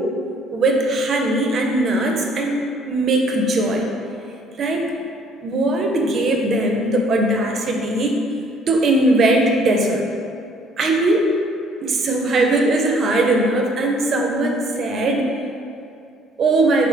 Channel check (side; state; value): both; normal; correlation 0.60